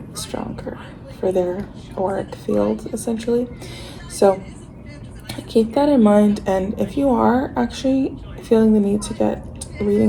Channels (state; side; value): identical; both; correlation 1.00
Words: stronger for their auric field, essentially. So keep that in mind. And if you are actually feeling the need to get